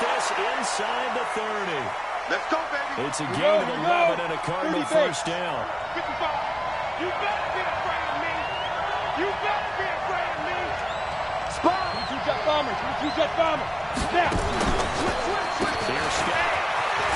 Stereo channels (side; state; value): both; identical; correlation 1.00